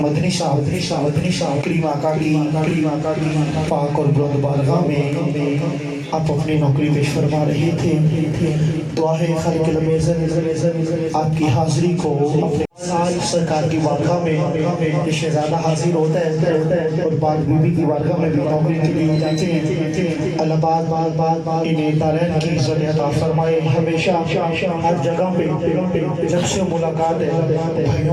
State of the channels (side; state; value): both; identical; correlation 1.00